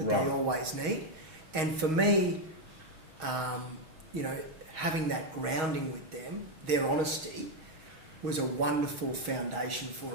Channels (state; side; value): late; left; 6.2 ms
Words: they always need. And for me, you know, having that grounding with them, their honesty, was a wonderful foundation